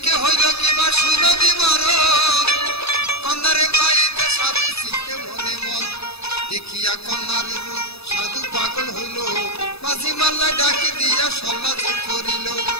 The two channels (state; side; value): late; right; 0.79 ms